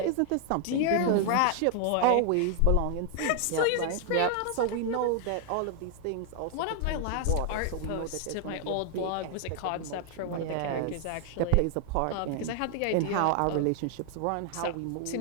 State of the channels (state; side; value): different; both; correlation 0.00